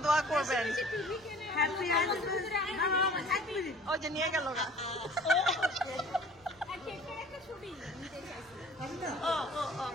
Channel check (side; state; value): right; noise; rumble, 28 dB below the sound